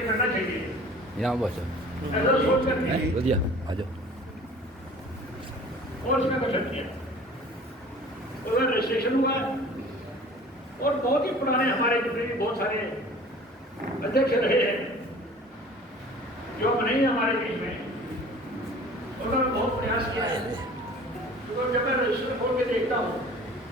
करना चाहिए, यहाँ बस ऐसा सोच करके बढ़िया आ जाओ। और इसका गठन किया, उधर रजिस्ट्रेशन हुआ और बहुत ही पुराने हमारे जितने भी बहुत सारे अध्यक्ष रहे हैं जो अब नहीं है हमारे बीच में, उन्होंने बहुत प्रयास किया है। तो जब मैं रजिस्टर खोल के देखता हूँ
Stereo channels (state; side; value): normal; both; correlation 0.46